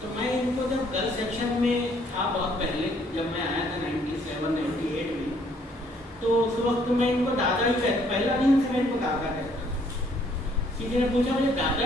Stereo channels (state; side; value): normal; both; correlation 0.65